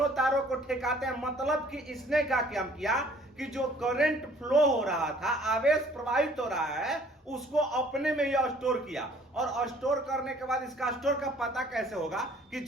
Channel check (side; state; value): both; normal; correlation 0.57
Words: तारों को ठेकाते हैं, मतलब कि इसने क्या किया कि जो करंट फ्लो हो रहा था, आवेश प्रवाहित हो रहा है, उसको अपने में यह स्टोर किया। और स्टोर करने के बाद इसका स्टोर का पता कैसे होगा कि